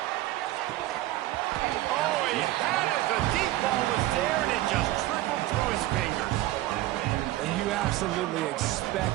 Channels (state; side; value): quieter; left; 16.0 dB